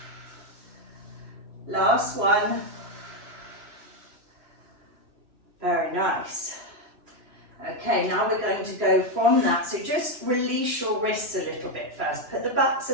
Last one. Very nice. Okay, now we're going to go from that. So just release your wrists a little bit first. Put the backs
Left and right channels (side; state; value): left; late; 2.9 ms